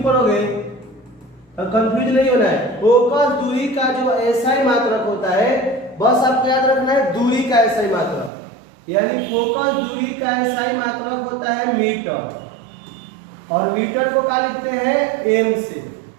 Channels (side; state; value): left; drops out; at 8.3 s